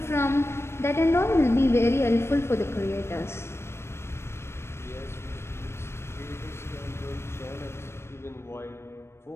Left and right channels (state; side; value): late; right; 0.12 ms